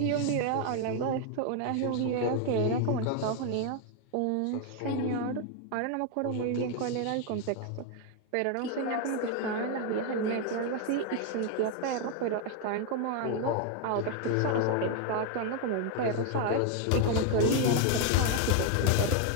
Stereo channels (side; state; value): both; different; correlation 0.01